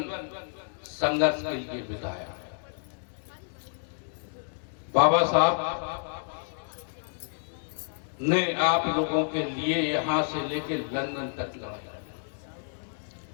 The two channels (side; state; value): right; silent; digital silence